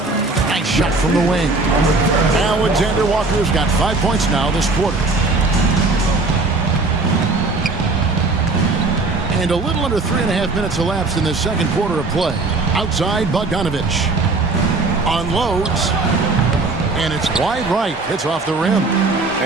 Nice shot from the wing. Alexander Walker's got 5 points now this quarter. And a little under 3.5 minutes elapsed in the second quarter of play. Outside, Bogdanovich unloads, and it's wide right. It's off the rim.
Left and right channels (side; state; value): left; quieter; 3.5 dB